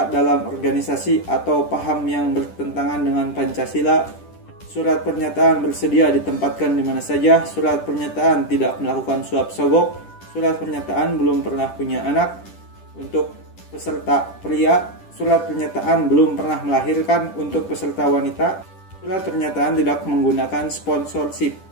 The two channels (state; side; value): late; right; 10 ms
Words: dalam organisasi atau paham yang bertentangan dengan Pancasila. Surat pernyataan bersedia ditempatkan di mana saja. Surat pernyataan tidak melakukan suap sogok. Surat pernyataan belum pernah punya anak untuk peserta pria. Surat pernyataan belum pernah melahirkan untuk peserta wanita. Surat pernyataan tidak menggunakan sponsorship.